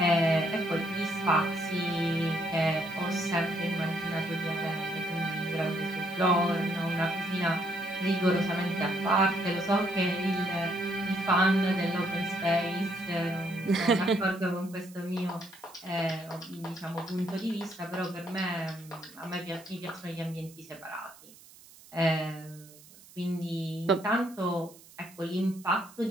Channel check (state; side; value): noise; right; hiss, 22 dB below the sound